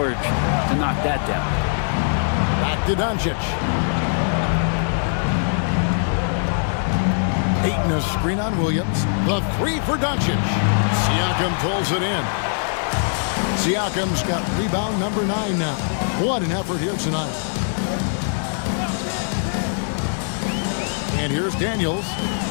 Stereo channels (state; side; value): silent; right; digital silence